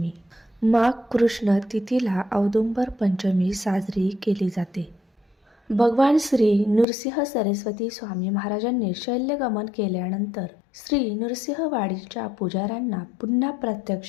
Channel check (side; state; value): right; drops out; at 6.9 s